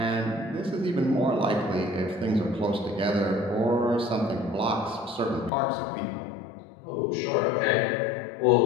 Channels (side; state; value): right; drops out; at 5.5 s